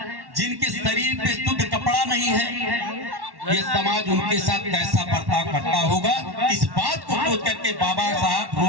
जिनके शरीर पे शुद्ध कपड़ा नहीं है, ये समाज उनके साथ कैसा बर्ताव करता होगा, इस बात को सोच करके बाबा साहब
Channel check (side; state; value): left; late; 1.1 ms